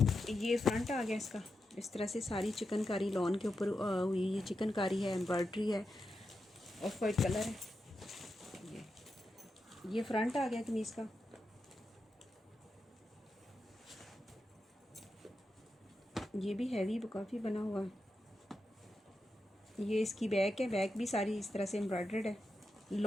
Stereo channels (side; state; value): both; normal; correlation 0.88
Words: ये फ्रंट आ गया इसका, इस तरह से सारी चिकनकारी लॉन के ऊपर हुई, ये चिकनकारी है, एम्ब्रॉयडरी है, ऑफ वाइट कलर है। ये फ्रंट आ गया कमीज़ का। ये भी हैवी काफ़ी बना हुआ है। ये इसकी बैक है, बैक भी सारी इस तरह से एम्ब्रॉयडर्ड है,